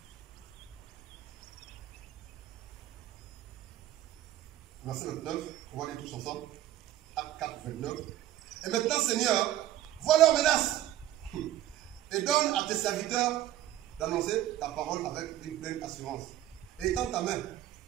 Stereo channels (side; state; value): left; quieter; 13.3 dB